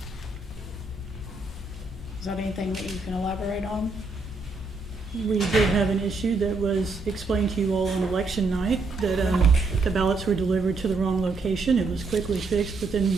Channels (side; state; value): left; quieter; 3.6 dB